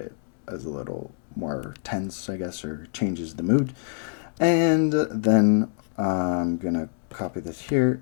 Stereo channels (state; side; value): silent; right; digital silence